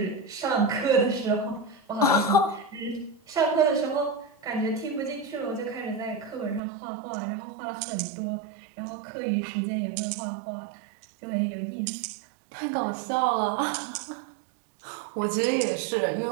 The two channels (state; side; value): drops out; left; at 6.6 s